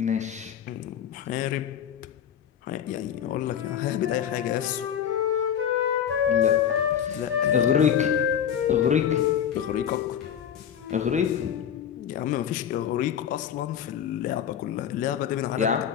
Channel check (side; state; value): right; quieter; 9.0 dB